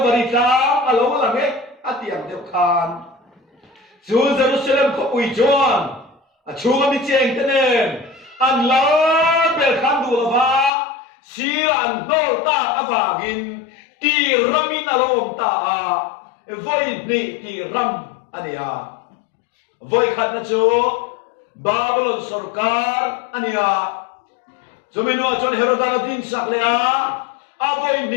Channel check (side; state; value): right; drops out; at 10.7 s